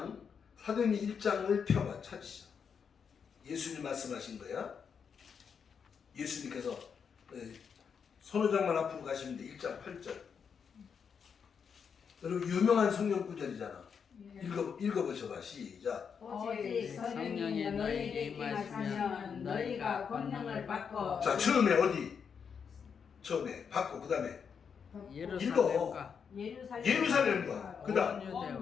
펴봐 찾으시죠. 예수님 말씀하신 거야. 예수님께서 손호장만 앞으로 가시면 돼. 1장 8절. 여러분 유명한 성경 구절이잖아. 읽어보셔봐. 시작. 오직 성령이 너희에게 임하시면 너희가 권능을 받고. 자, 처음에 어디? 처음에 받고 그 다음에 예루살렘과 예루살렘과 그 다음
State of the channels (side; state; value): right; quieter; 6.6 dB